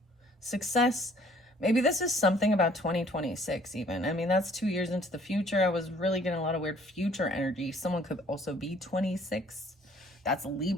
Success. Maybe this is something about 2026 even. I mean, that's 2 years into the future. I was really getting a lot of weird future energy. Someone could also be 26. That's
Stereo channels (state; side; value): normal; both; correlation 0.58